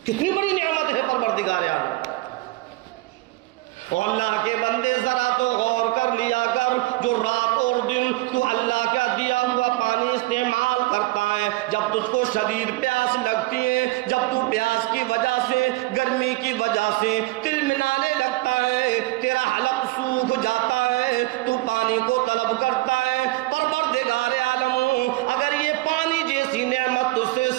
کتنی بڑی نعمت ہے پروردگار عالم. اور اللہ کے بندے ذرا تو غور کر لیا کر، جو رات اور دن تو اللہ کا دیا ہوا پانی استعمال کرتا ہے، جب تجھ کو شدید پیاس لگتی ہے، جب تو پیاس کی وجہ سے، گرمی کی وجہ سے تلملانے لگتا ہے، تیرا حلق سوکھ جاتا ہے، تو پانی کو طلب کرتا ہے. پروردگار عالم اگر یہ پانی جیسی نعمت تجھ سے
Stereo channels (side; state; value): left; quieter; 20.5 dB